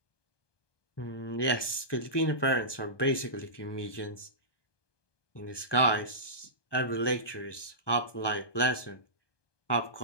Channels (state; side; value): late; right; 1.2 ms